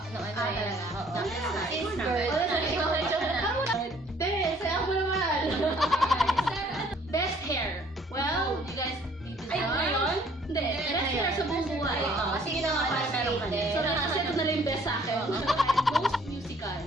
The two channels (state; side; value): normal; both; correlation 0.59